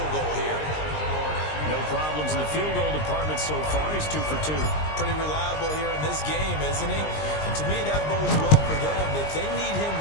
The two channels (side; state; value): right; late; 20 ms